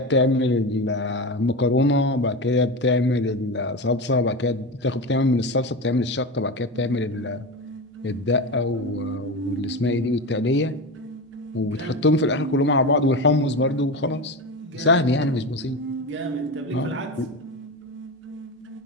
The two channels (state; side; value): normal; both; correlation 0.21